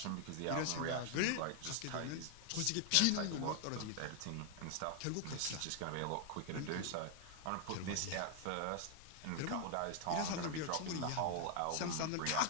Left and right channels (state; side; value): different; both; correlation 0.00